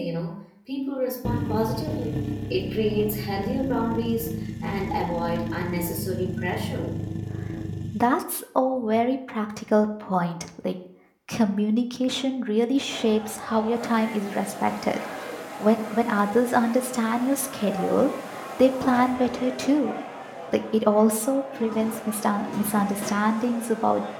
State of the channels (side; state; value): both; identical; correlation 1.00